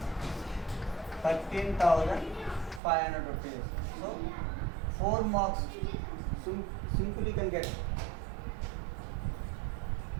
13,500 rupees. So 4 marks simply can get.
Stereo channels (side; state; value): left; drops out; at 2.8 s